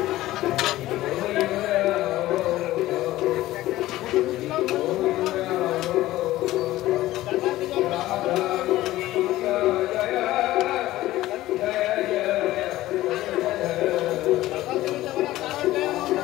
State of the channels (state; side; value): quieter; right; 16.0 dB